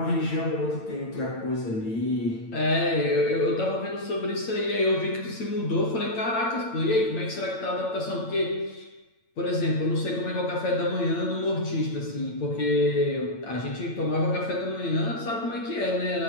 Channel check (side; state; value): right; late; 8.9 ms